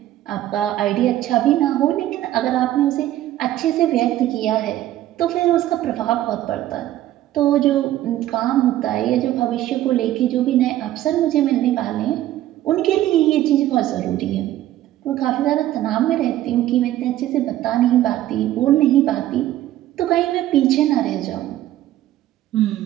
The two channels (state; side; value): quieter; left; 13.8 dB